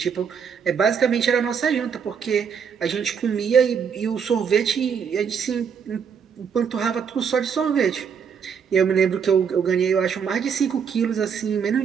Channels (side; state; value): left; quieter; 6.9 dB